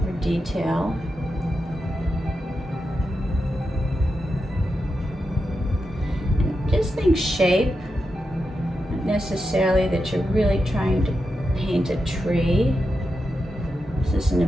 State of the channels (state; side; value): normal; both; correlation 0.88